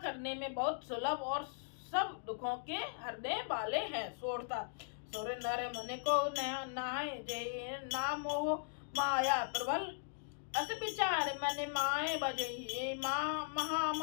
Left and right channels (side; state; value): right; silent; digital silence